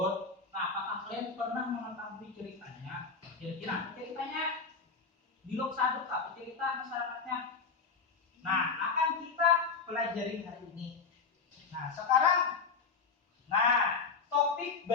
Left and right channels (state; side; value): quieter; right; 5.0 dB